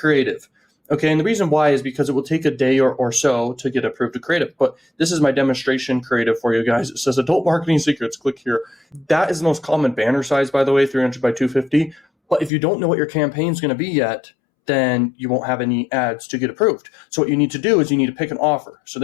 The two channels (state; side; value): drops out; right; at 12.5 s